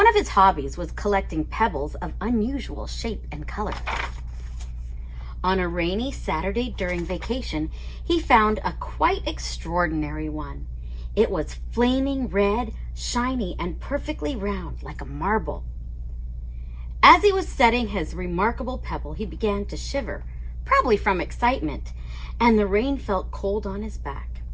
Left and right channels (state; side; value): identical; both; correlation 1.00